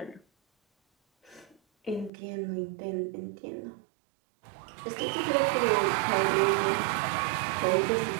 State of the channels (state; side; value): drops out; left; at 2.1 s